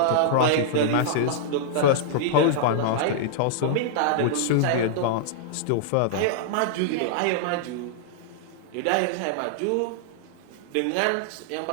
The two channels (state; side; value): different; both; correlation -0.02